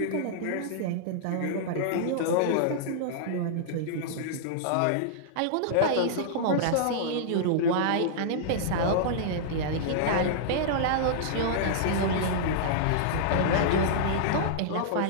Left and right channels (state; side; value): different; both; correlation -0.02